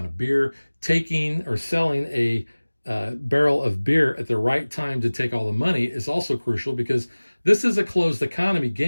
of beer, taking or selling a barrel of beer at the right time to take all the money is also crucial because this is a closed economy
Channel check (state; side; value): inverted; both; correlation -1.00